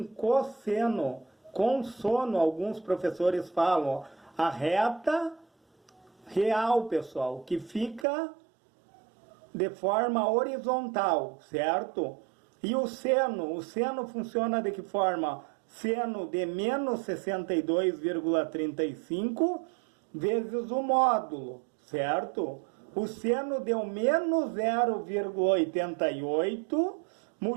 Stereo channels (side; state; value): left; drops out; at 8.1 s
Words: cosseno, consono, alguns professores falam, ó, a reta real, pessoal, que fica de forma horizontal, certo? E o seno funciona de que forma? Seno de menos 62,35 vezes o módulo, certo? O seno deu menos 0,88,